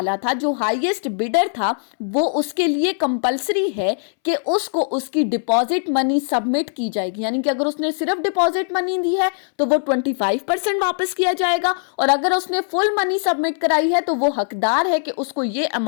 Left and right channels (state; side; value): silent; right; 65 dB below the other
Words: था, जो हाईएस्ट बिडर था, वो उसके लिए कंपलसरी है कि उसको उसकी डिपॉजिट मनी सबमिट की जाएगी। यानी कि अगर उसने सिर्फ डिपॉजिट मनी दी है तो वो 25% वापस किया जाएगा, और अगर उसने फुल मनी सबमिट कराई है तो वो हकदार है कि उसको ये